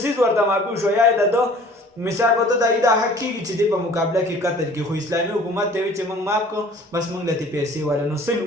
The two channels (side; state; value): both; normal; correlation 0.50